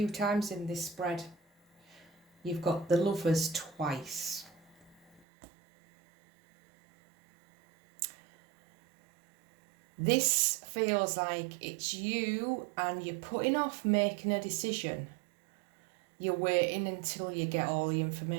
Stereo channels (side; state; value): left; drops out; at 5.2 s